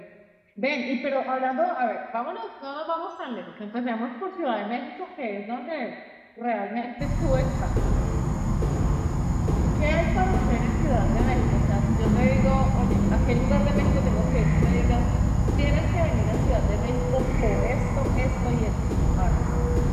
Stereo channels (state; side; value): identical; both; correlation 1.00